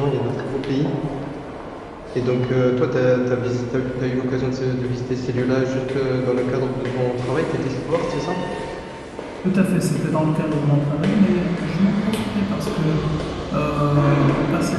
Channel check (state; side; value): identical; both; correlation 1.00